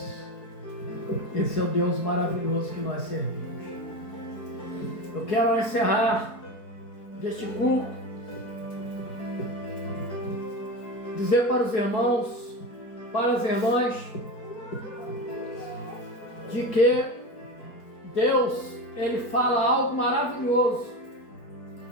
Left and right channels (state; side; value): late; right; 4.3 ms